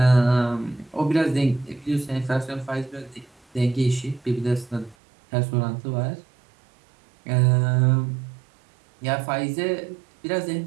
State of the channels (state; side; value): drops out; left; at 5.0 s